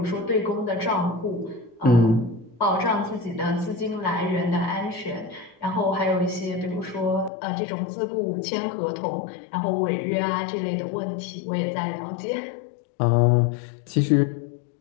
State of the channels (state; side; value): drops out; right; at 7.3 s